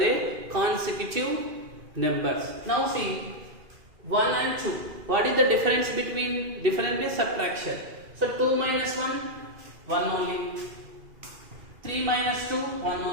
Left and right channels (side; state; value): left; late; 2.4 ms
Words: consecutive numbers. Now see, 1 and 2. What is the difference between? Difference is subtraction. So 2 minus 1, 1 only. 3 minus 2, 1